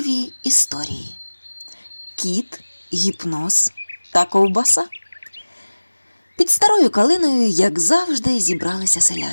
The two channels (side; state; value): both; inverted; correlation -1.00